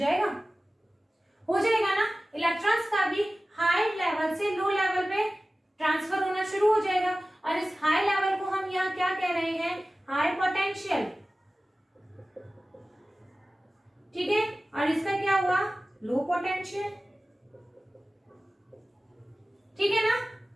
ना। इलेक्ट्रॉन्स का भी हाई लेवल से लो लेवल पे ट्रांसफर होना शुरू हो जाएगा, और इस हाई लेवल को हम यहाँ क्या कह रहे हैं, हाई पोटेंशियल, ठीक है, और इसका क्या हुआ, लो पोटेंशियल, ठीक है ना।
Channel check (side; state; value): both; normal; correlation 0.96